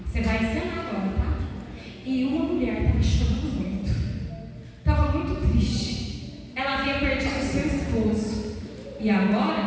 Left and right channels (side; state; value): both; identical; correlation 1.00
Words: Você vai ensinar agora, tá? E uma mulher estava chorando muito. e